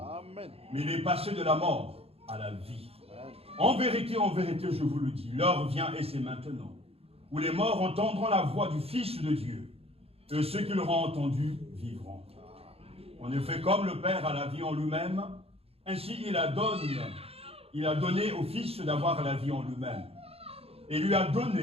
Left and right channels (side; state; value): left; late; 0.28 ms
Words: Amen. Mais il est passé de la mort à la vie. Amen. En vérité, je vous le dis, l'heure vient et c'est maintenant, où les morts entendront la voix du Fils de Dieu, et ceux qui l'auront entendu vivront. En effet, comme le Père a la vie en lui-même, ainsi il a donné au Fils d'avoir la vie en lui-même, et lui a